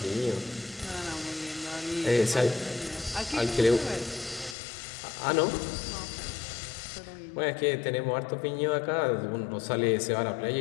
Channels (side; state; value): right; drops out; at 4.5 s